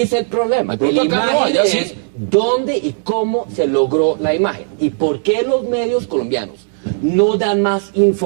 es el problema. La imagen es dónde y cómo se logró la imagen. Y por qué los medios colombianos no dan más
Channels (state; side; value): silent; left; digital silence